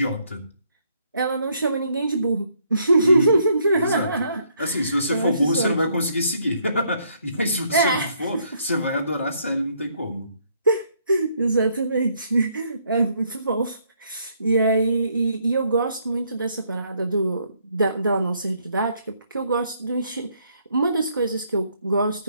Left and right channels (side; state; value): both; inverted; correlation -0.70